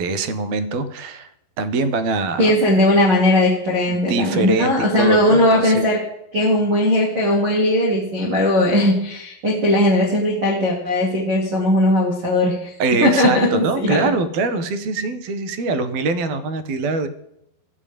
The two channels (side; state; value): left; late; 12 ms